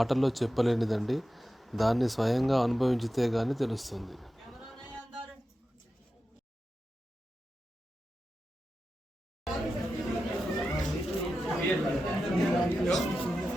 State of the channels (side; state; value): both; normal; correlation 0.92